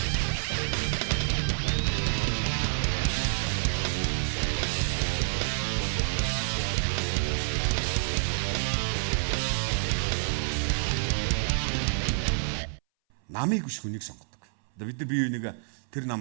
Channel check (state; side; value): silent; left; 59 dB below the other